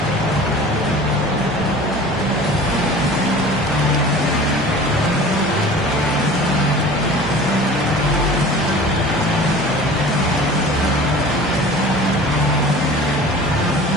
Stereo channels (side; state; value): both; normal; correlation 0.41